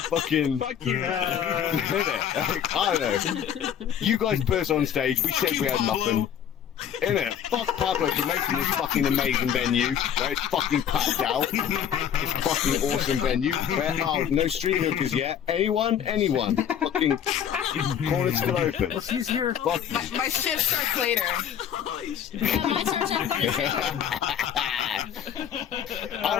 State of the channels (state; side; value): quieter; right; 9.1 dB